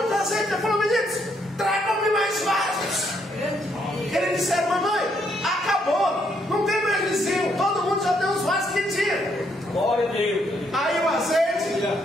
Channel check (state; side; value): normal; both; correlation 0.73